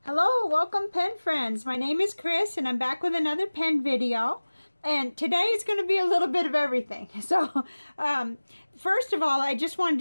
Hello, welcome pen friends. My name is Chris and I'm back with another pen video. And today is going to be a little bit of everything. So, first of all, I just wanted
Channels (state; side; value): inverted; both; correlation -1.00